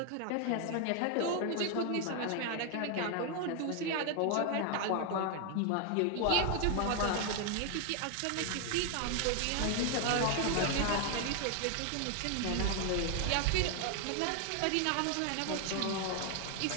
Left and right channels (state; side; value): different; both; correlation 0.01